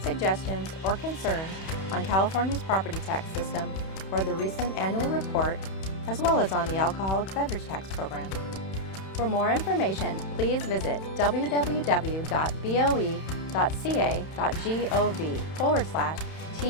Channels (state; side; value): late; right; 31 ms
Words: suggestions, or concerns on California's property tax system or the recent annual report, as well as on the alcoholic beverage tax program. For more information, please visit